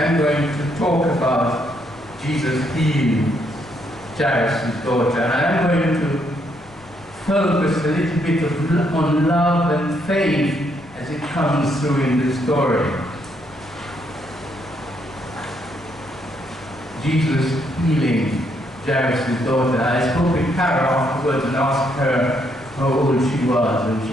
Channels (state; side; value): noise; left; rumble, 24 dB below the sound